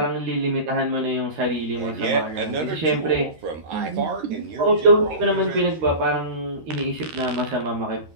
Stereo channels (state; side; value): late; left; 13 ms